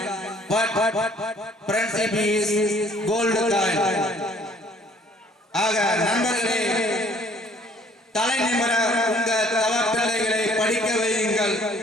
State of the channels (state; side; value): normal; both; correlation 0.58